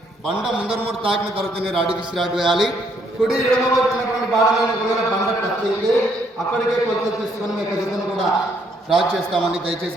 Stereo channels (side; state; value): both; normal; correlation 0.70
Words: బండ ముందర మూడు తాకిన తర్వాతనే రాడు విసిరాడు వేయాలి. కుడి ఎడమ వచ్చినటువంటి బాడలను ఒకవేళ బండ టచ్ అయితే అక్కడికే కొలత తీసుకొని మీకు జతను కూడా డ్రా చేస్తామని దయచేసి